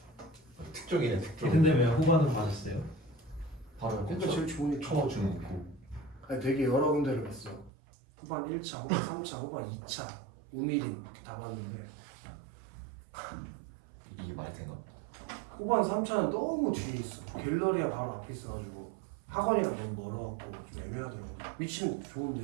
특종이네 특종. 근데 왜 후반은 맞았어요? 바로 그러니까 제일 좋으니까. 쳐주는 거. 아니 되게 여러 군데를 갔어. 후반 1차, 후반 3차, 후반 2차, 우미린 이렇게 다 봤는데 이게 말이 되나? 후반 3차는 너무 뒤에 있어. 갤러리아 바로 앞에 있어가지고 학원이랑 너무 멀어갖고 좀 애매하더라고. 위치는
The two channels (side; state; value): left; drops out; at 7.7 s